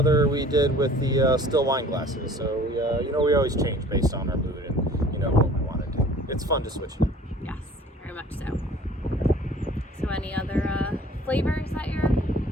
we did with the still wine glasses. So we always change based on our mood and what we want to do. It's fun to switch it up. Yes, very much so. So any other flavors that you're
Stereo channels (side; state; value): both; normal; correlation 0.49